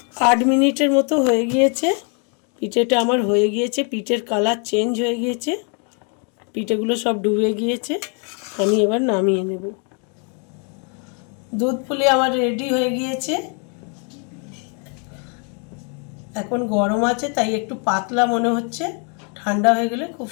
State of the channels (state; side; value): quieter; right; 38.6 dB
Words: আট মিনিটের মতো হয়ে গিয়েছে। পিঠেটা আমার হয়ে গিয়েছে, পিঠের কালার চেঞ্জ হয়ে গিয়েছে, পিঠেগুলো সব ডুবে গিয়েছে। আমি এবার নামিয়ে নেব। দুধ পুলি আমার রেডি হয়ে গিয়েছে। এখন গরম আছে তাই একটু পাতলা মনে হচ্ছে, ঠান্ডা হয়ে গেলে খুব